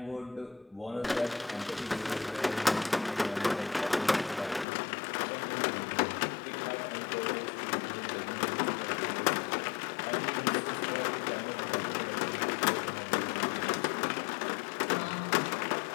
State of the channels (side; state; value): right; drops out; at 4.7 s